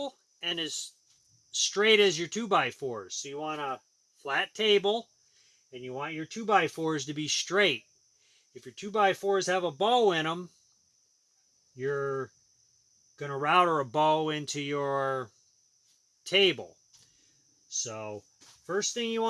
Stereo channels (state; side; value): identical; both; correlation 1.00